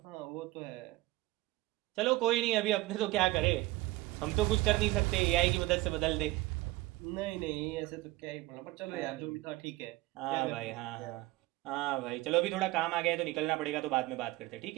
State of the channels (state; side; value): quieter; left; 19.1 dB